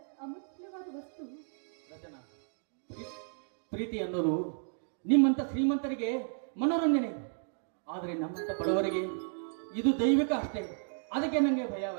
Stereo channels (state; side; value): silent; left; digital silence